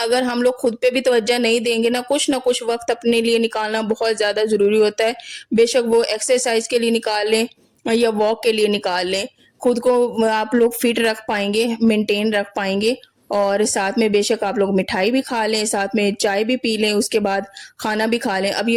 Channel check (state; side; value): identical; both; correlation 1.00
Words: ہم لوگ خود پہ بھی توجہ نہیں دیں گے نا, کچھ نہ کچھ وقت اپنے لیے نکالنا بہت زیادہ ضروری ہوتا ہے. بے شک وہ ایکسرسائز کے لیے نکال لیں یا واک کے لیے نکال لیں, خود کو آپ لوگ فٹ رکھ پائیں گے, مینٹین رکھ پائیں گے. اور ساتھ میں بے شک آپ لوگ مٹھائی بھی کھا لیں, ساتھ میں چائے بھی پی لیں, اس کے بعد کھانا بھی کھا لیں. اب